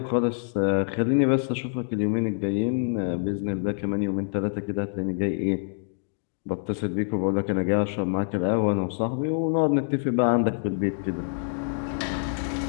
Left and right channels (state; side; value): silent; right; digital silence